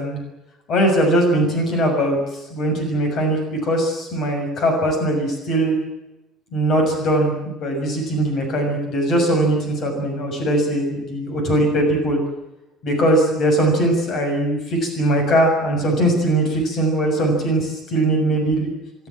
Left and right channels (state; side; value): normal; both; correlation 0.40